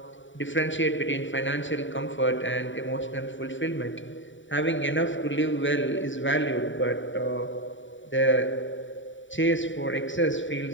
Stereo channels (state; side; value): late; right; 0.55 ms